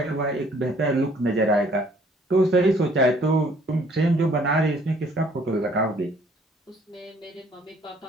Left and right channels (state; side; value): normal; both; correlation 0.60